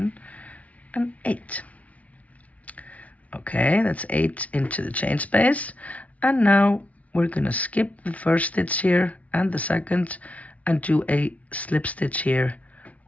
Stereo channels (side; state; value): right; late; 0.068 ms